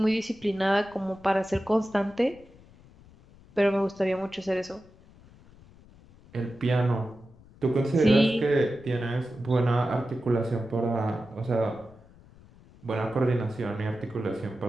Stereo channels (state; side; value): noise; left; rumble, 25 dB below the sound